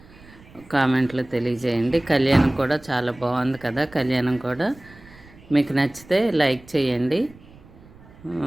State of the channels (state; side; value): noise; right; rumble, 23 dB below the sound